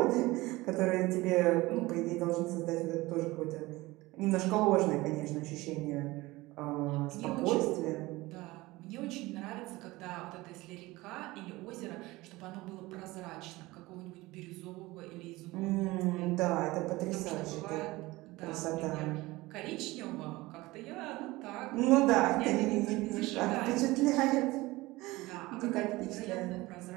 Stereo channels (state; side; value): quieter; left; 20.3 dB